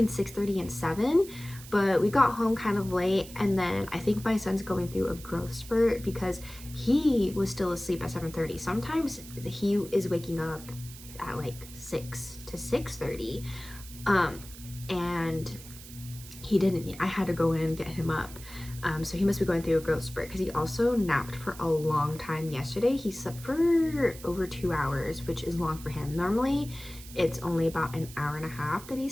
6:30 and 7. But we got home kind of late, and then I think my son's going through a growth spurt because he was still asleep at 7:30. Sometimes he is waking up at like 6 to 6:30, and he didn't. I had to go in and get him up. So he must be going through a growth spurt because he also napped for a long time yesterday. He slept for over 2 hours, which is long for him. Normally it's only about an hour and a half that he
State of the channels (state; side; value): noise; right; hiss, 16 dB below the sound